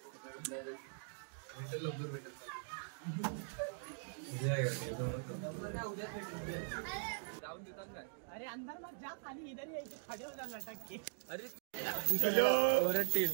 अरे अंदर मत जा, खाली इधर ही खड़े हो जाना लटक के. अरे चलो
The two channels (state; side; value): silent; left; digital silence